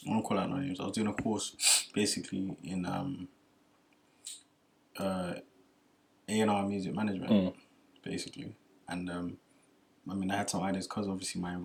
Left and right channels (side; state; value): both; identical; correlation 1.00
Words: won't call out no names. I was doing a course, basically, in A&R music management, basically. And I mean, I had some ideas because obviously my